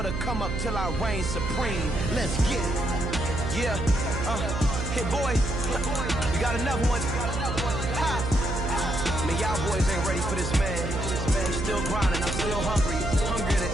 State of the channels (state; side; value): noise; right; hum, 4 dB below the sound